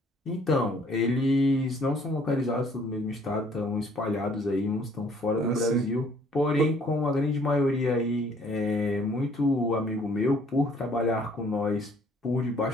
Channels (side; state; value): both; normal; correlation 0.60